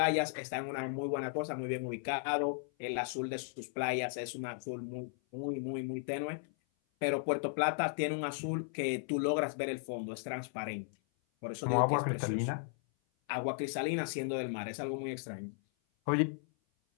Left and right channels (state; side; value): silent; right; 54 dB below the other